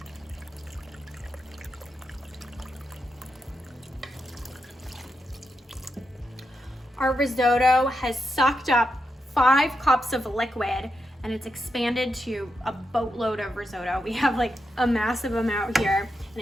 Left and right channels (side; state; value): both; normal; correlation 0.85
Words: Our risotto has sucked up 5 cups of liquid and it's expanded to a boatload of risotto. We have like a massive amount here and